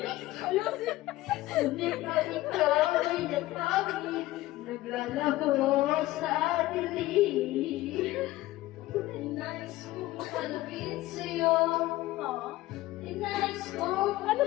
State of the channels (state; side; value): quieter; right; 17.1 dB